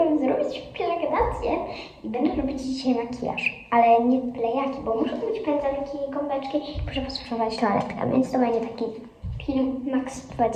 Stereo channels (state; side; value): identical; both; correlation 1.00